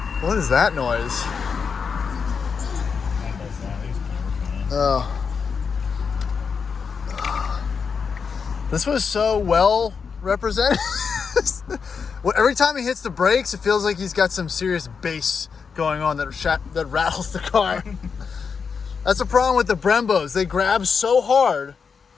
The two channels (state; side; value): quieter; right; 5.8 dB